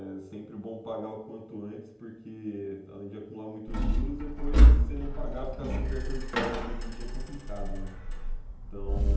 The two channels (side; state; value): both; identical; correlation 1.00